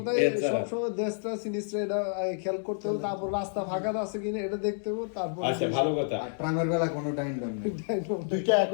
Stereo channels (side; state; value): right; silent; 58 dB below the other